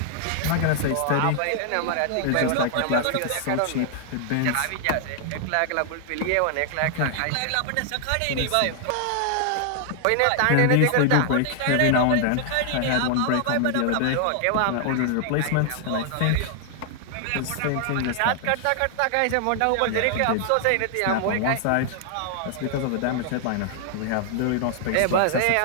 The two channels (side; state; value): both; different; correlation 0.00